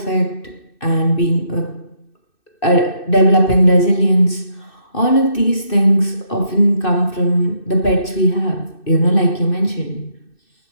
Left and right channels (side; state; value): right; late; 2.6 ms